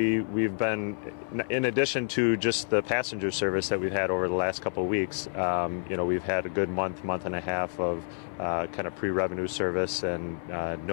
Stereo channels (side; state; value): right; silent; 59 dB below the other